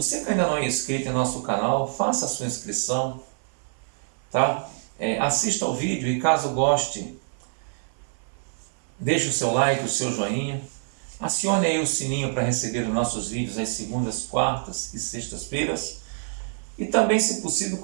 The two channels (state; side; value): silent; left; 59 dB below the other